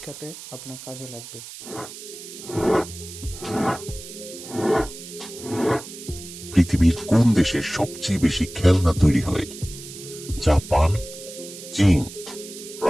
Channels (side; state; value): right; noise; hiss, 13 dB below the sound